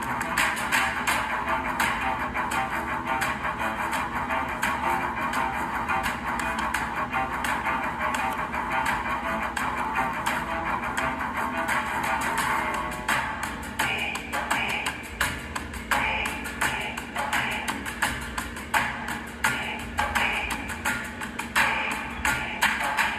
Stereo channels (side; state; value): both; identical; correlation 1.00